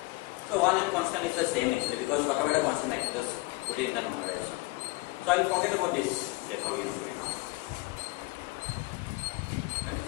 So 1 and constant is the same actually, because whatever the constant I can just put it in the normalization. So I will forget about this Jacobian here now.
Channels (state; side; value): quieter; right; 22.6 dB